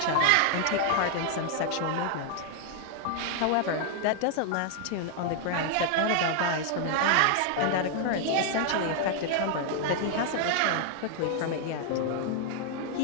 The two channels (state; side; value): different; both; correlation 0.00